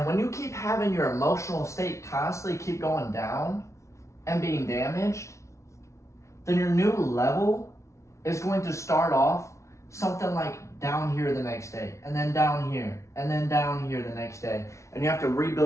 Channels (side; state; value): right; late; 0.14 ms